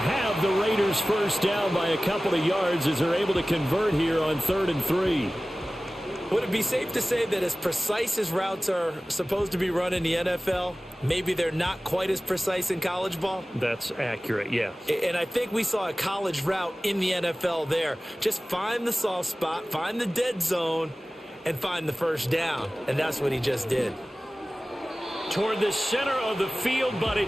the Raiders first down by a couple of yards as they're able to convert here on 3rd and 3. Would it be safe to say that as precise as routes are supposed to be run in the NFL, maybe they're not quite as precise in college ball? That's accurate, yeah. And I think we saw a college route in the NFL there. Just find the soft spot, find the dead zone, and find the first down. And that's what he just did. Toward the center of the field, but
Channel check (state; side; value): normal; both; correlation 0.97